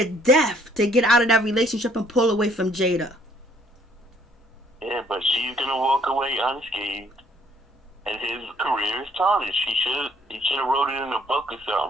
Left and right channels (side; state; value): both; normal; correlation 0.63